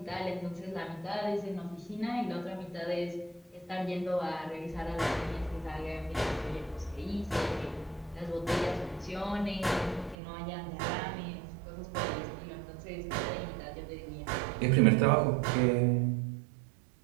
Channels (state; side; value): drops out; left; at 10.2 s